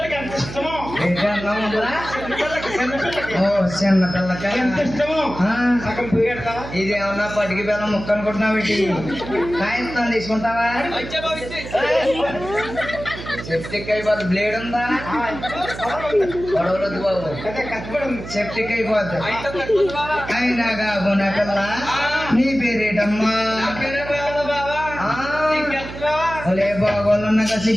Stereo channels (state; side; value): noise; right; hum, 11 dB below the sound